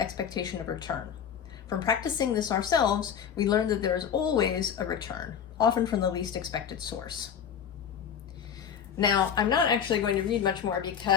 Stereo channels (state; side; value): quieter; right; 8.2 dB